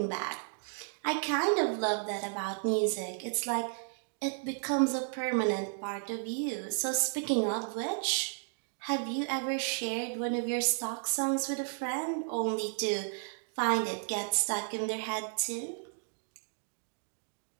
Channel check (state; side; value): silent; left; 56 dB below the other